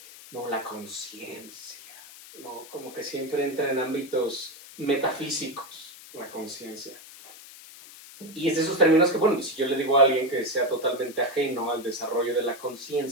no, la conciencia, ¿no? Como que siempre entra en ámbitos metafísicos, la conciencia. Y es de esos términos que, bueno, si yo le digo a alguien que sea totalmente ajeno al desarrollo de la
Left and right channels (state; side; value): noise; left; hiss, 18 dB below the sound